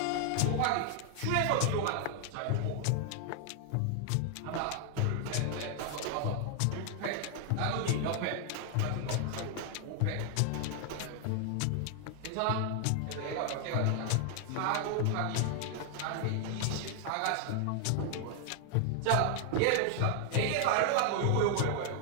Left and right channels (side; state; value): both; different; correlation 0.00